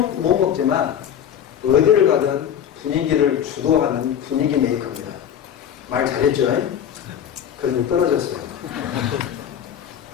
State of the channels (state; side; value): quieter; right; 9.2 dB